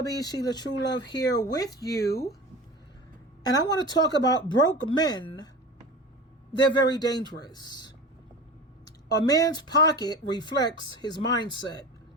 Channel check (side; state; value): both; normal; correlation 0.33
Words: SheilaTruelove here with you. And I want to talk about broke men. They're very dangerous. A man's pocket reflects his mindset.